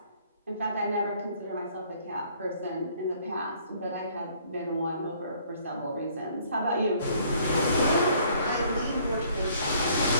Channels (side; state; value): both; inverted; correlation -0.61